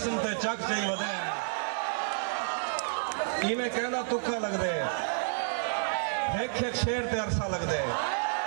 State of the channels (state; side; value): silent; left; 58 dB below the other